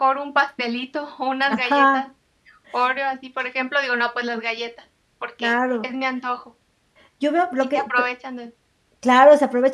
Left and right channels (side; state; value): both; identical; correlation 1.00